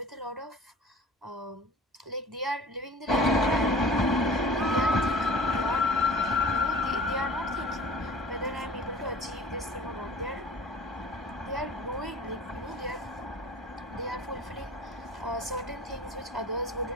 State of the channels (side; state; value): both; normal; correlation 0.43